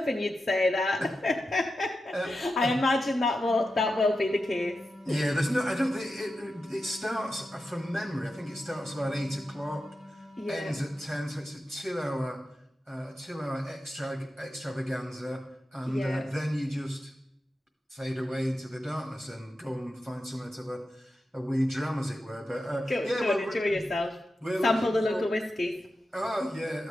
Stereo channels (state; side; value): normal; both; correlation 0.90